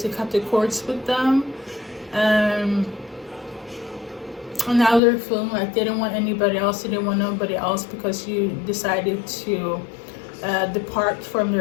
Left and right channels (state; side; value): drops out; right; at 5.0 s